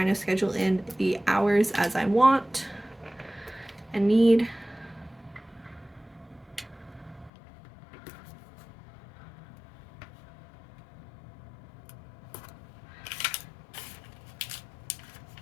of schedule in the hours as I want. a need.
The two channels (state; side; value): drops out; right; at 7.3 s